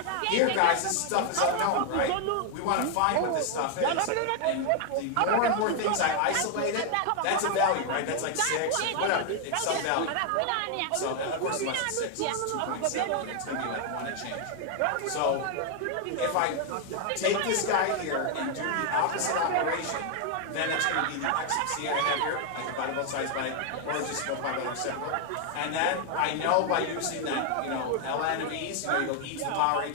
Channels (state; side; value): different; both; correlation 0.00